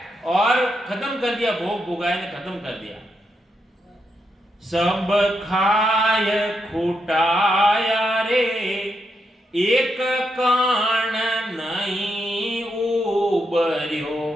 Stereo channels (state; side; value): normal; both; correlation 0.82